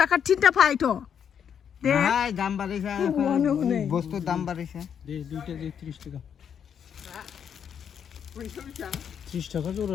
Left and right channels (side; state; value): right; quieter; 8.0 dB